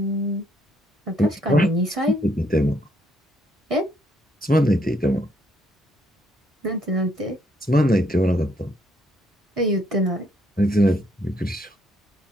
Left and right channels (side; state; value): both; normal; correlation 0.71